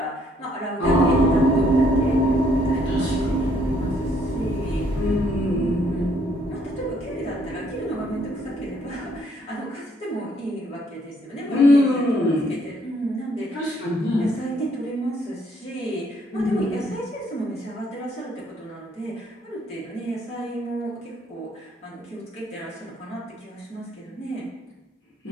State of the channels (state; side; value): normal; both; correlation 0.67